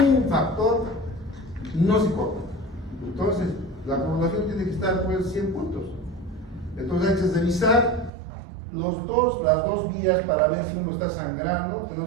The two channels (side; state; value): left; drops out; at 8.1 s